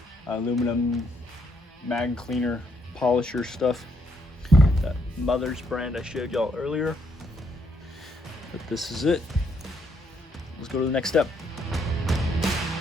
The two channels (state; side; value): normal; both; correlation 0.73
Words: aluminum mag cleaner polisher stuff. That Mother's brand I showed y'all earlier. But this is it. Let's go to the next step.